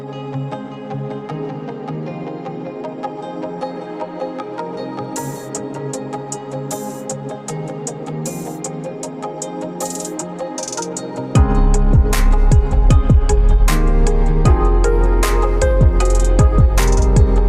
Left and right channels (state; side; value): identical; both; correlation 1.00